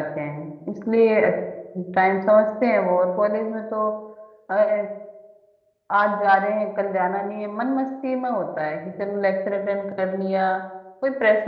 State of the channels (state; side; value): identical; both; correlation 1.00